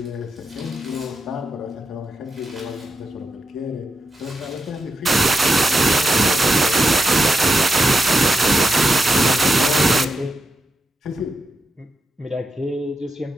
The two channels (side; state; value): both; normal; correlation 0.86